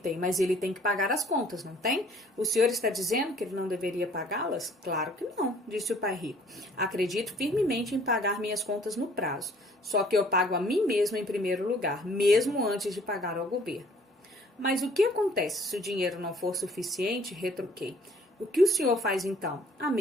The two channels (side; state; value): both; normal; correlation 0.57